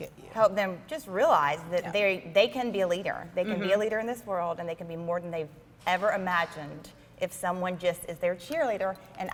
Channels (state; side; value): identical; both; correlation 1.00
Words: help them just realize that they can be a leader. They can be a leader in this world, and they can be more than they've ever imagined if someone just is their cheerleader, and